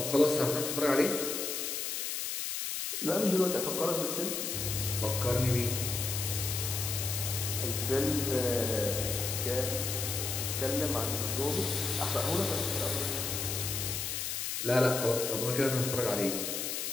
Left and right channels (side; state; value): left; noise; hiss, 2 dB below the sound